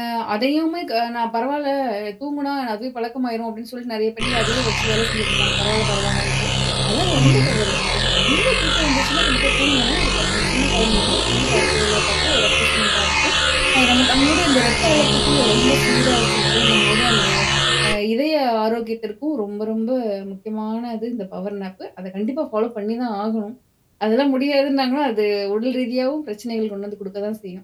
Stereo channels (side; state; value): both; identical; correlation 1.00